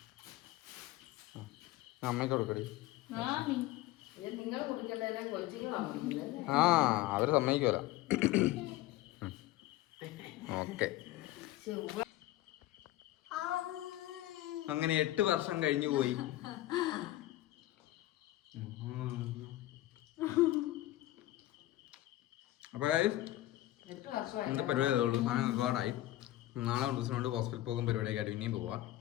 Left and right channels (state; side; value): quieter; right; 15.9 dB